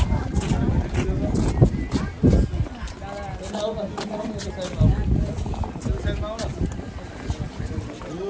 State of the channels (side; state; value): both; identical; correlation 1.00